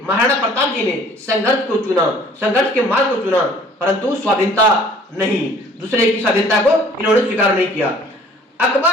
महाराणा प्रताप जी ने संघर्ष को चुना, संघर्ष के मार्ग को चुना, परंतु स्वाधीनता नहीं, दूसरे की स्वाधीनता को इन्होंने स्वीकार नहीं किया। अकबर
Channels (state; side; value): normal; both; correlation 0.54